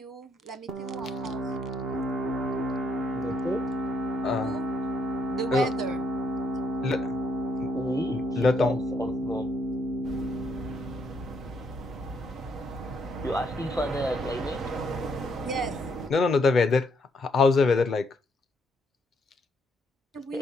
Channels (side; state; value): both; normal; correlation 0.72